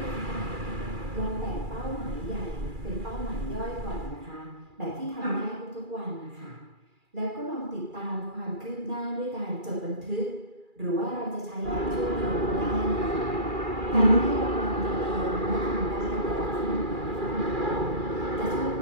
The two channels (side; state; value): left; late; 2.4 ms